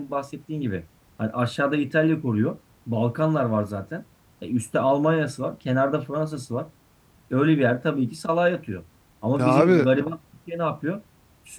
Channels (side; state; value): both; identical; correlation 1.00